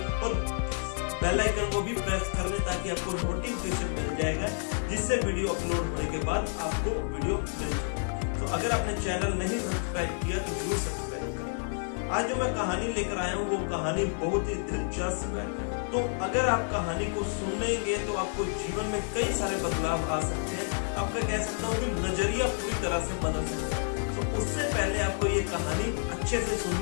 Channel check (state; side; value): silent; right; 58 dB below the other